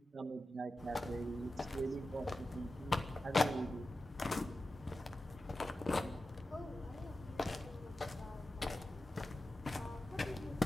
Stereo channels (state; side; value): normal; both; correlation 0.93